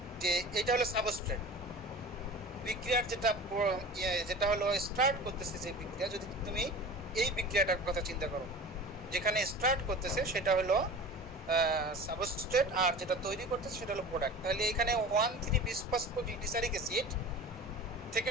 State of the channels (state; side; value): normal; both; correlation 0.37